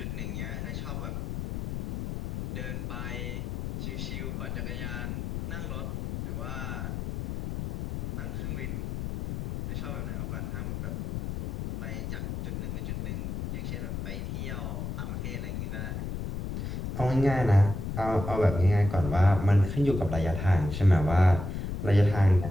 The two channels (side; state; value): left; noise; rumble, 4 dB below the sound